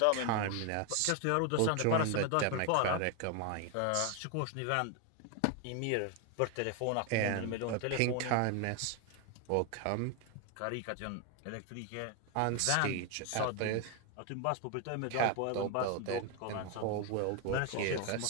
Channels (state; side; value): different; both; correlation 0.01